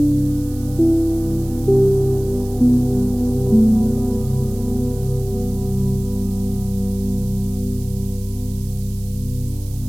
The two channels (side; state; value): right; noise; hiss, 21 dB below the sound